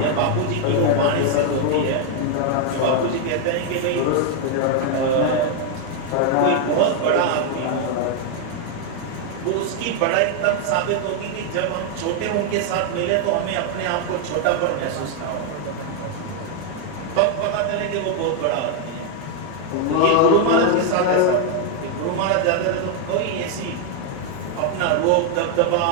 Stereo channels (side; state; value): both; different; correlation 0.00